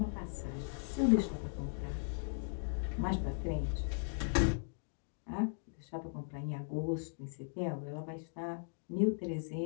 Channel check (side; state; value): right; silent; digital silence